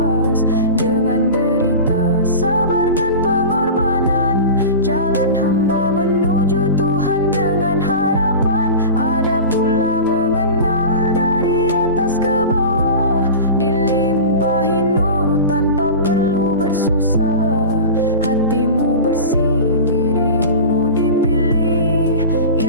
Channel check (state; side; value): inverted; both; correlation -0.31